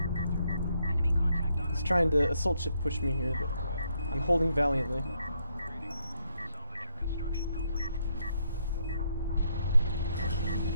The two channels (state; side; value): inverted; both; correlation -0.75